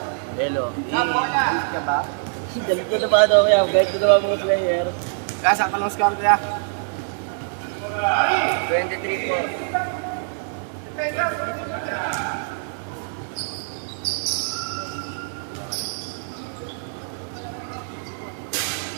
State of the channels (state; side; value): silent; left; 63 dB below the other